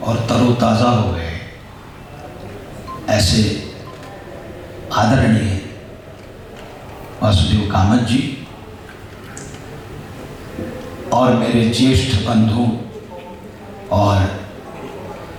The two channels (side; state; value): both; identical; correlation 1.00